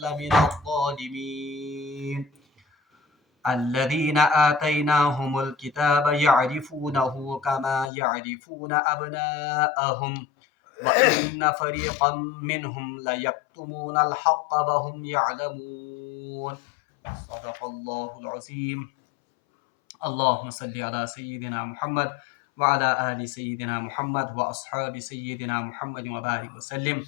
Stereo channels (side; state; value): right; drops out; at 7.9 s